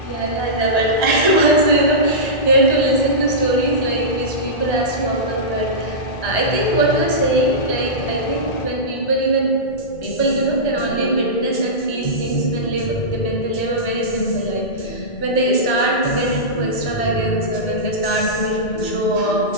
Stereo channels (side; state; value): right; late; 1.3 ms